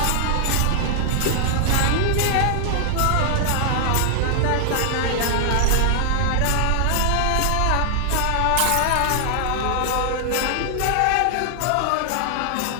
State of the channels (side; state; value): both; different; correlation -0.01